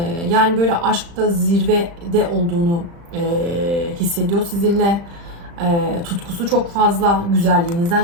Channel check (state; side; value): late; left; 35 ms